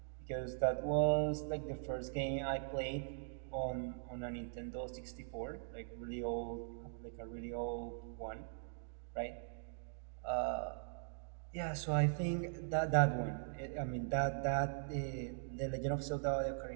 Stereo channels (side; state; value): left; silent; digital silence